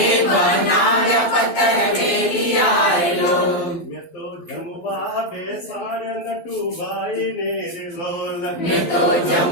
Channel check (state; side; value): late; right; 12 ms